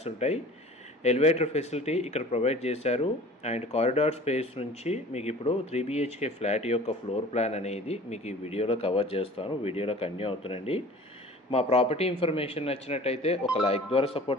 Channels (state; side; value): normal; both; correlation 0.44